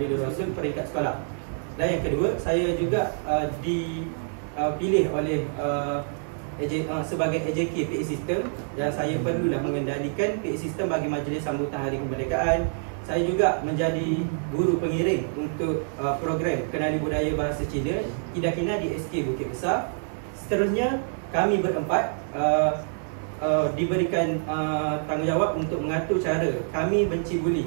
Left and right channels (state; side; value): silent; left; 59 dB below the other